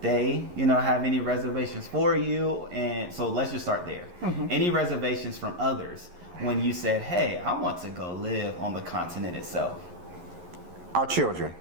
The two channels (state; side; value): late; left; 11 ms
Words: they, you know, have any reservations for you? And so let's just start there. Any reservations from others when you said, hey, I want to go live on the continent itself? Our children.